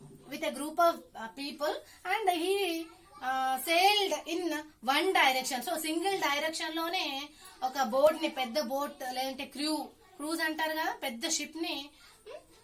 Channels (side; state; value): both; identical; correlation 1.00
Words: with a group of people and he sailed in one direction. So single direction లోనే ఒక బోట్ ని, పెద్ద బోట్ లేదంటే క్రూజ్ అంటారు కదా, పెద్ద షిప్ ని